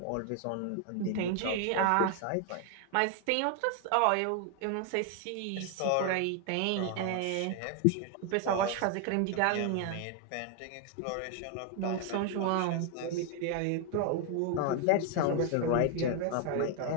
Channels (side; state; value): both; different; correlation 0.00